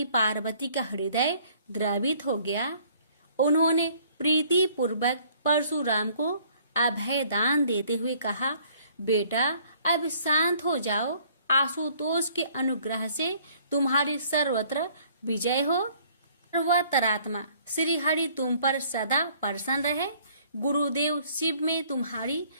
पार्वती का हृदय द्रवित हो गया। उन्होंने प्रीति पूर्वक परशुराम को अभय दान देते हुए कहा, बेटा, अब शांत हो जाओ। आशुतोष के अनुग्रह से तुम्हारी सर्वत्र विजय हो। सर्वतरात्मा श्री हरि तुम पर सदा प्रसन्न रहे। गुरुदेव शिव में तुम्हारी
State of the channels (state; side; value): inverted; both; correlation -0.59